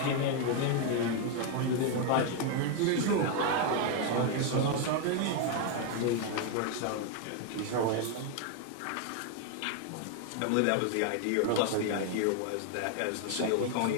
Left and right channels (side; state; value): both; different; correlation 0.01